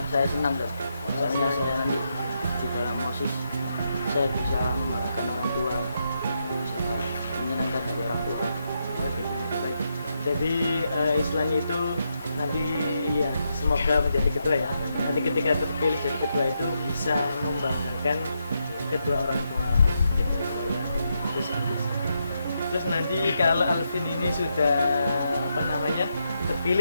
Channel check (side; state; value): both; inverted; correlation -0.82